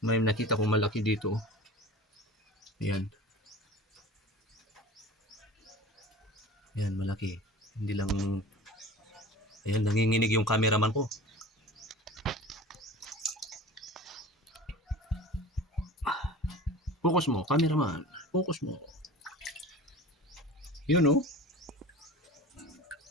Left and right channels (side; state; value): both; normal; correlation 0.38